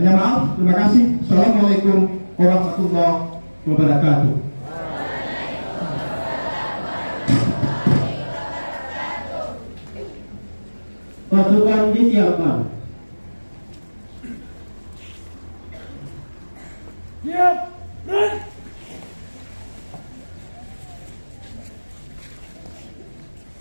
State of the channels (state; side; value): inverted; both; correlation -1.00